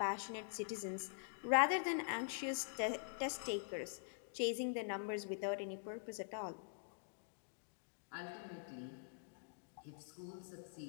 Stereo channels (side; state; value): right; silent; digital silence